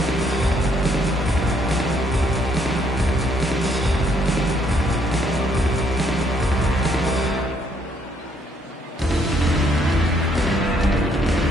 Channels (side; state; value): both; normal; correlation 0.69